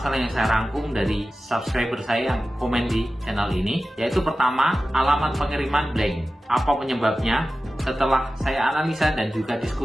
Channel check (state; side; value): normal; both; correlation 0.95